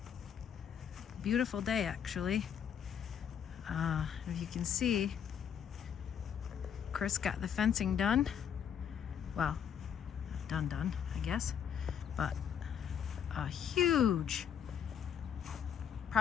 Beautiful day, actually. If you can see, Chris got the fencing done. Well, done, I guess. But a huge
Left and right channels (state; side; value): quieter; right; 8.3 dB